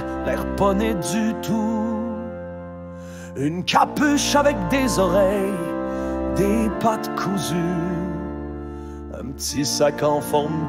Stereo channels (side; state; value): both; identical; correlation 1.00